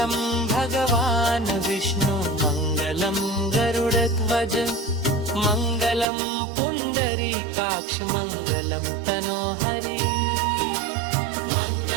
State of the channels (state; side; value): drops out; left; at 6.1 s